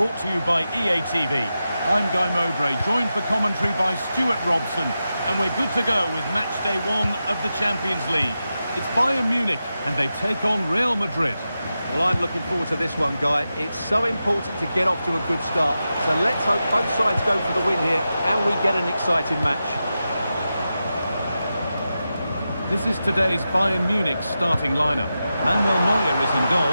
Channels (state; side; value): inverted; both; correlation -0.91